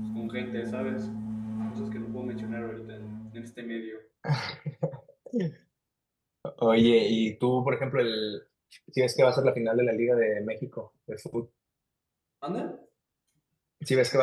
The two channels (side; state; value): both; identical; correlation 1.00